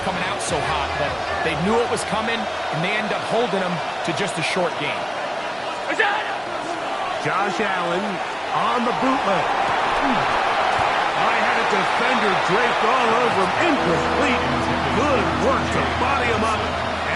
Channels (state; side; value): identical; both; correlation 1.00